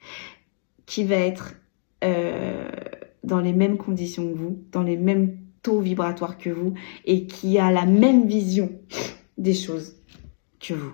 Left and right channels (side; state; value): right; silent; 63 dB below the other